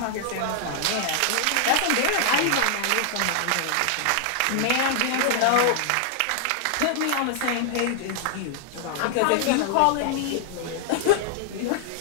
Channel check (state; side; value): different; both; correlation 0.00